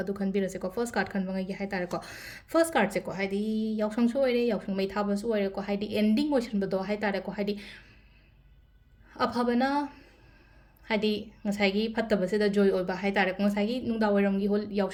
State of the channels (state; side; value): identical; both; correlation 1.00